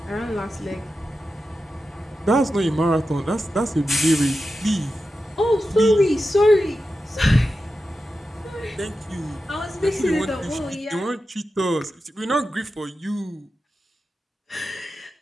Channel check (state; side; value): normal; both; correlation 0.91